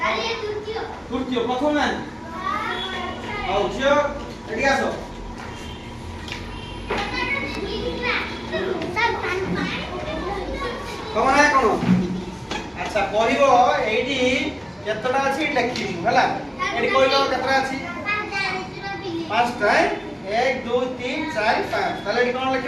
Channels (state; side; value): identical; both; correlation 1.00